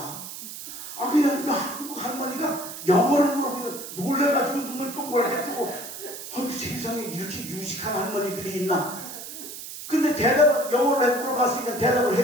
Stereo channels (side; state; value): right; noise; hiss, 10 dB below the sound